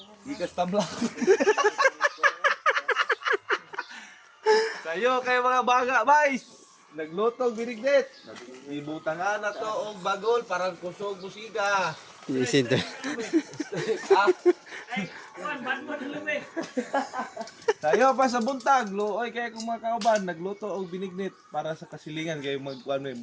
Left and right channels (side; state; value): both; identical; correlation 1.00